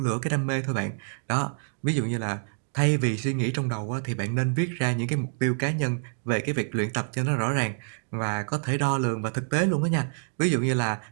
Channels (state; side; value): silent; left; digital silence